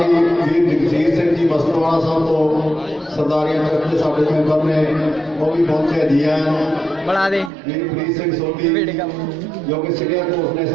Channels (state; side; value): drops out; left; at 7.5 s